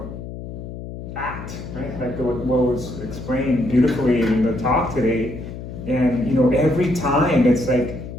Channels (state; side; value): noise; left; hum, 10 dB below the sound